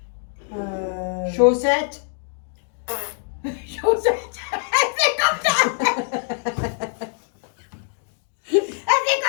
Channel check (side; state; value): right; silent; 63 dB below the other